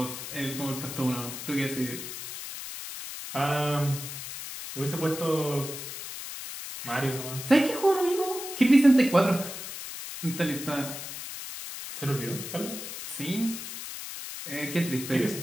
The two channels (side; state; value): left; noise; hiss, 9 dB below the sound